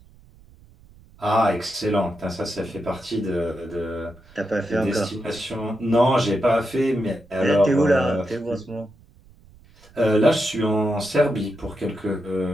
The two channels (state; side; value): noise; right; rumble, 26 dB below the sound